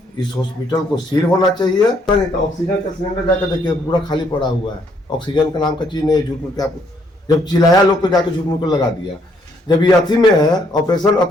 इस हॉस्पिटल को सील होना चाहिए। नहीं तो ऑक्सीजन का सिलेंडर जाकर देखिए पूरा खाली पड़ा हुआ है, ऑक्सीजन का नाम का चीज नहीं है। झूठ मूठ के आप जब चिल्लाया लोग को जाके झूठ मूठ को लगा दिया। जब ये अथी में है, ऑपरेशन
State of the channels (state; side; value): normal; both; correlation 0.69